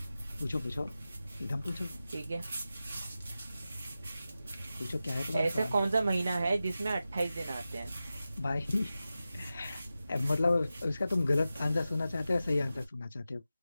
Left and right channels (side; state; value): both; inverted; correlation -0.93